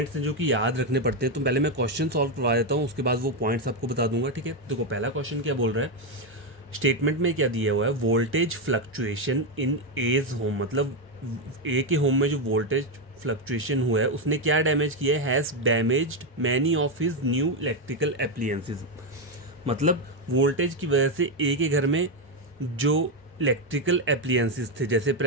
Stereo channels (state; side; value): normal; both; correlation 0.06